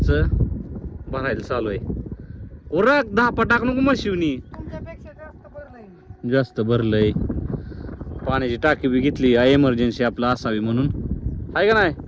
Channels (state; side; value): identical; both; correlation 1.00